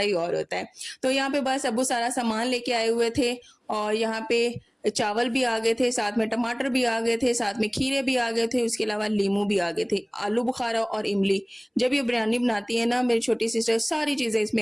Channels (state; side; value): identical; both; correlation 1.00